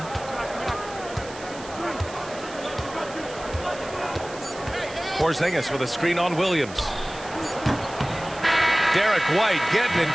Porzingis with a screen on Williams. Derek White getting it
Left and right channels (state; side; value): noise; right; hiss, 16 dB below the sound